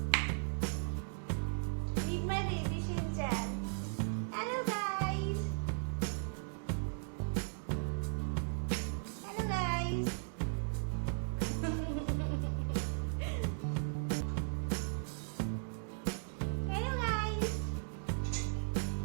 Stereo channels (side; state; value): left; silent; digital silence